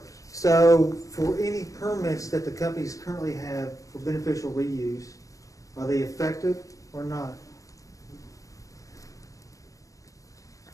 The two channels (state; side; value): late; right; 0.16 ms